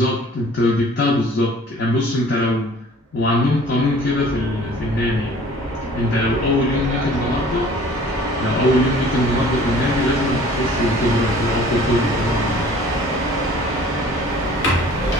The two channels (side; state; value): both; normal; correlation 0.50